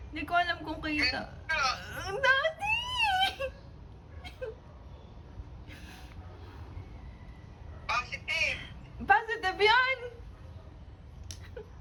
Hindi ko alam kung kita. Daddy! Positive. Positive yan!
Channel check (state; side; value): identical; both; correlation 1.00